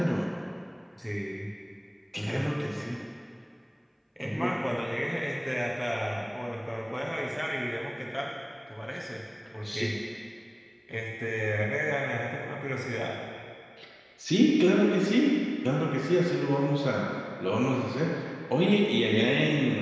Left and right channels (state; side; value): identical; both; correlation 1.00